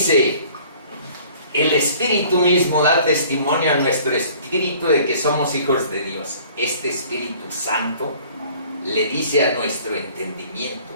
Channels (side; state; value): both; inverted; correlation -0.52